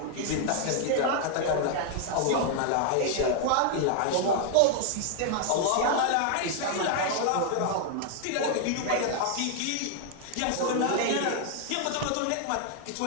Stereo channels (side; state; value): both; different; correlation 0.00